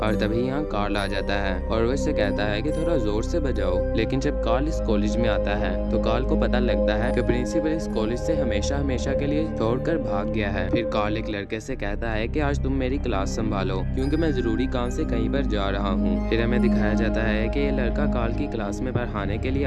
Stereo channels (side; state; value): both; identical; correlation 1.00